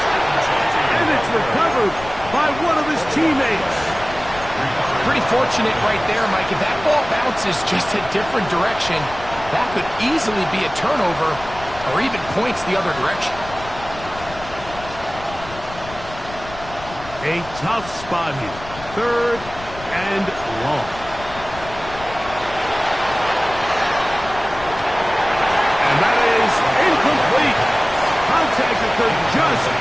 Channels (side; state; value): left; noise; rumble, 15 dB below the sound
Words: And it's recovered by one of his teammates. Pretty fortunate right there, Mike. If that ball bounces just a different direction, that could easily be a turnover or even points the other direction. A tough spot here. 3rd and long. And that is incomplete. Contact occurred just